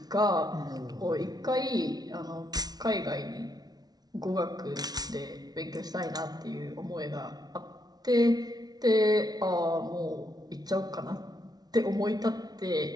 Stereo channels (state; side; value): late; left; 0.19 ms